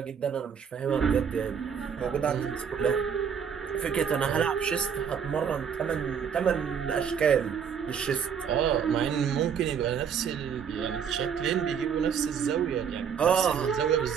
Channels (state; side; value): quieter; left; 7.3 dB